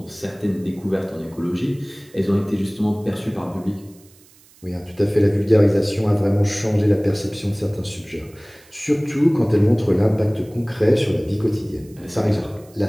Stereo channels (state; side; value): noise; right; hiss, 27 dB below the sound